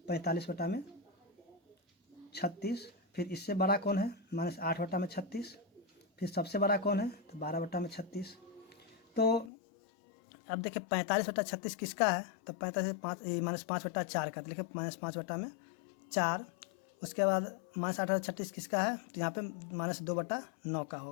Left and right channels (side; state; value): right; drops out; at 9.5 s